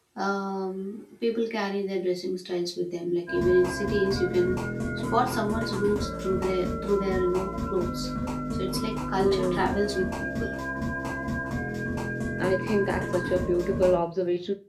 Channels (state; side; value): identical; both; correlation 1.00